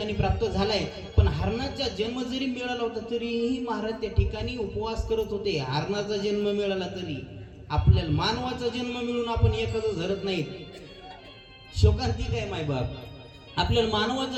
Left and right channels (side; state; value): both; identical; correlation 1.00